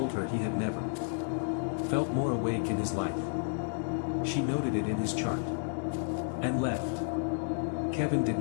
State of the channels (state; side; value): silent; right; digital silence